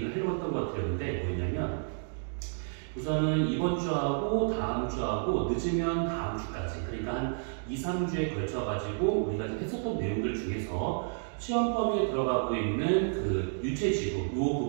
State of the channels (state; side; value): silent; left; digital silence